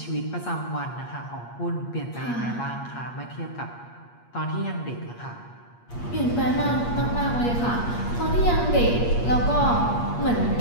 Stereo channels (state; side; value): late; right; 8.5 ms